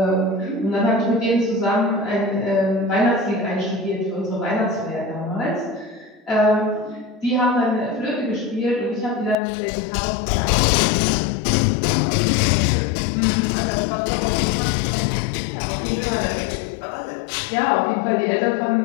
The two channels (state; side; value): drops out; right; at 9.3 s